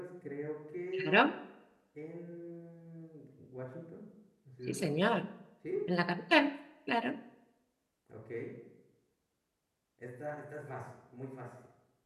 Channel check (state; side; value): identical; both; correlation 1.00